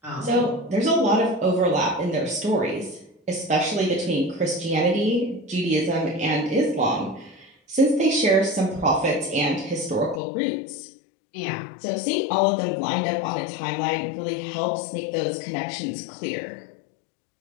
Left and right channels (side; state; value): right; drops out; at 10.2 s